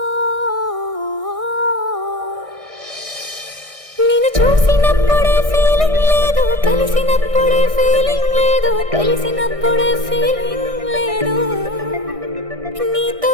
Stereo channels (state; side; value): late; left; 1.6 ms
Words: నిన్ను చూసినప్పుడే ఫీలింగ్ లేదు, కలిసినప్పుడే ఫీలింగ్ లేదు, తెలిసినప్పుడే ఫీలింగ్ లేదు, నీతో